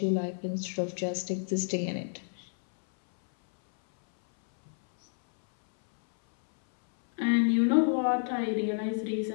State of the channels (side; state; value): right; silent; 59 dB below the other